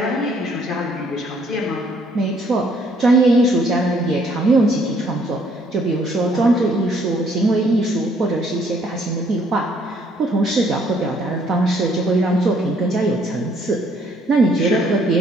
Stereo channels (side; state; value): both; normal; correlation 0.65